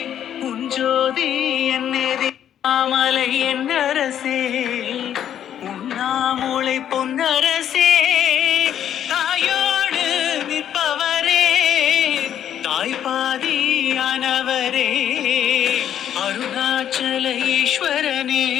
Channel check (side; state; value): right; quieter; 10.0 dB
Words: உஞ்சோதி என்னேதி மாமலை என்னரசே உண்ணாமூளை பொன்னரசே தாயோடு நிற்பவரே தாய்பாதியானவரே அருணாச்சல ஈஸ்வரனே